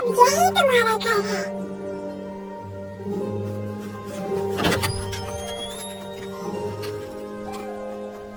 यही तुम्हारा घर है।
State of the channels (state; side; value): identical; both; correlation 1.00